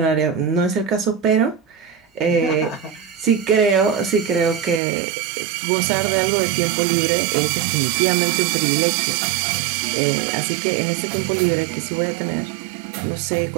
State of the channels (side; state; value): left; drops out; at 4.8 s